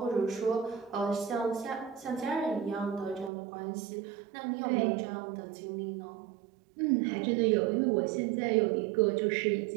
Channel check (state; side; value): drops out; left; at 3.3 s